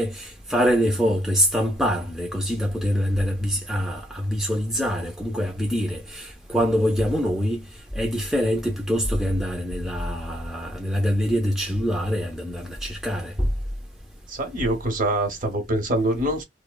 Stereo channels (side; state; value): both; normal; correlation 0.73